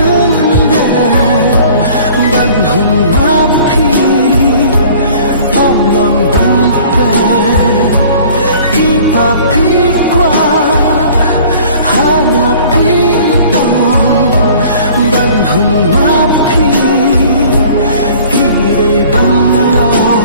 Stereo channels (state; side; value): inverted; both; correlation -0.49